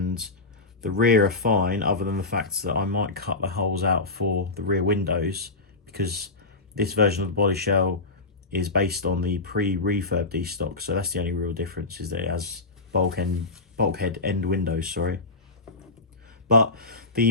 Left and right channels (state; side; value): quieter; right; 3.4 dB